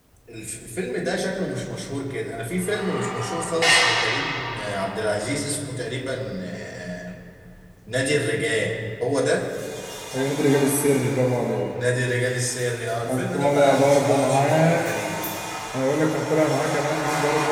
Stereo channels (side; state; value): both; identical; correlation 1.00